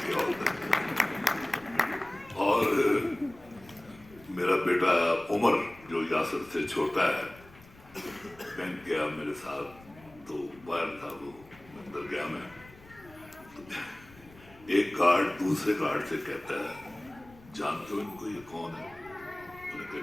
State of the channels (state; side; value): noise; left; rumble, 23 dB below the sound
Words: کیا ہوتا ہے. اور میرا بیٹا عمر جو یاسر سے چھوٹا ہے, بینک گیا میرے ساتھ تو باہر تھا, وہ اندر گیا میں, ایک گارڈ دوسرے گارڈ سے کہتا ہے, جانتے ہو ان کو یہ کون ہے؟ انہوں نے کہا